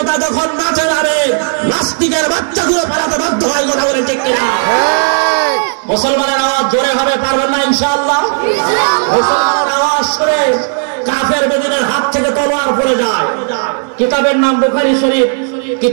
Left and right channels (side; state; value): left; silent; digital silence